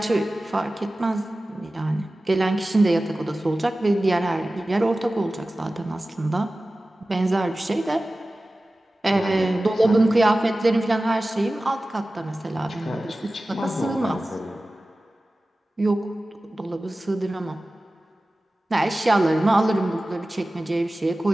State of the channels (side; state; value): both; normal; correlation 0.96